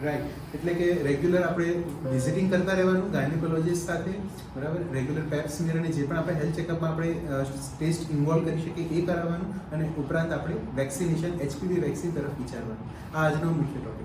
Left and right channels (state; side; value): identical; both; correlation 1.00